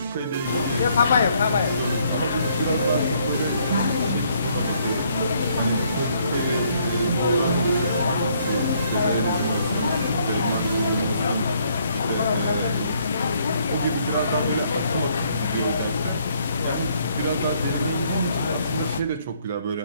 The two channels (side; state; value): both; inverted; correlation -0.67